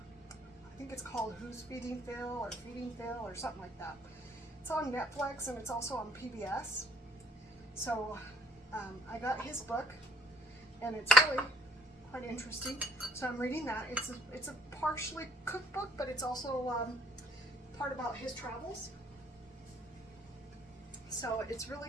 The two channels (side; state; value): both; normal; correlation 0.59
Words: think it's called Who's Feeding Phil or Feeding Phil or something like that. It's on Netflix and it's also on PBS. So I got his book, and it's really quite interesting. So I'm reading that. It's a partially cookbook, but it's also part about his travels. So it's really